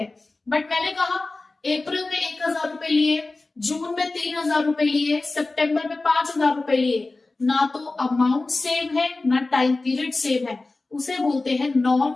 बट मैंने कहा अप्रैल में 1,000 रुपए लिए, जून में 3,000 रुपए लिए, सितंबर में 5,000 रुपए लिए, ना तो अमाउंट सेम है ना टाइम पीरियड सेम है, उसे बोलते हैं नॉन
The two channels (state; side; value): quieter; right; 3.3 dB